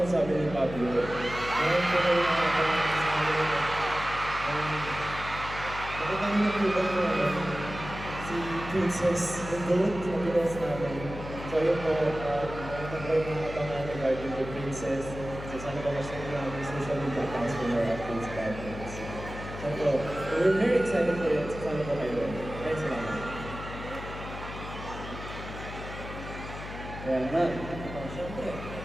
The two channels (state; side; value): noise; left; hum, 10 dB below the sound